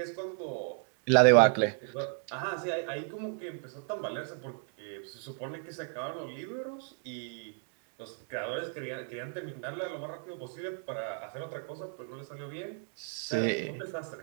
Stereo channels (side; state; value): left; silent; 55 dB below the other